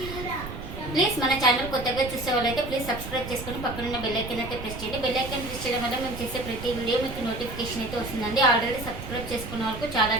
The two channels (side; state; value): right; noise; rumble, 9 dB below the sound